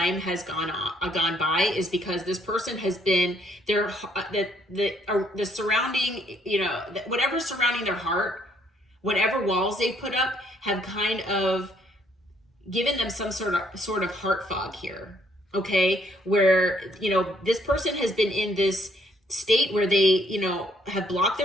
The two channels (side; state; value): both; normal; correlation 0.68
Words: has gone by is because this person has been the surrounding, whatever's surrounding their heart, whatever walls they've put up, have kind of given them some sort of heart fog here. Okay, where this person has been in this state where they have blocked